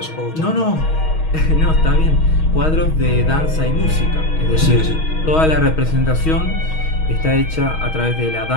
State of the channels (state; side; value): late; right; 6.3 ms